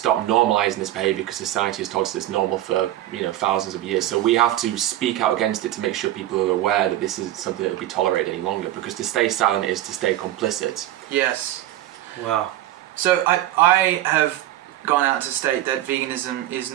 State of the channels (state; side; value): quieter; left; 13.9 dB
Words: normalising this behaviour because society has told us it's normal for, you know, thousands of years. So we have to speak out against it to make sure people are aware that this is something that will be tolerated any longer, because to stay silent is to stay complicit. Yes. Wow. So I have gone out to state that veganism is